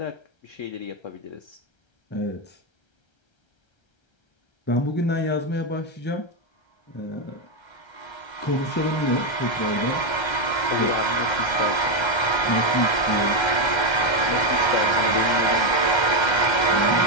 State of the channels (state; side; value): late; right; 1.3 ms